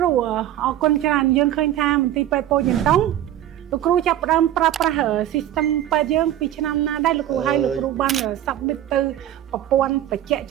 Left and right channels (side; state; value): left; quieter; 12.3 dB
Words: រូអរគុណច្រើនយើងឃើញថាមន្ទីរពេទ្យពោធិ៍ចតុងលោកគ្រូចាប់ផ្ដើមប្រើប្រាស់ system ពេទ្យយើងពីឆ្នាំណាដែរលោកគ្រូហើយលោកគ្រូបាន submit ទៅប្រព័ន្ធបច្ចេក